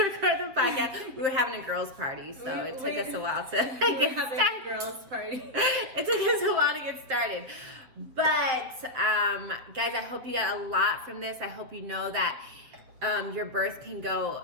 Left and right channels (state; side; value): late; left; 7.9 ms